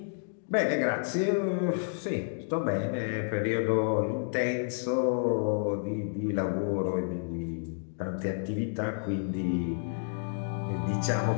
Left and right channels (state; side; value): silent; right; digital silence